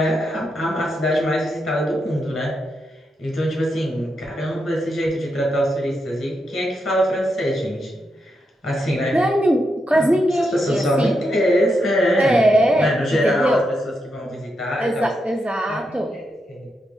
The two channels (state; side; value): normal; both; correlation 0.84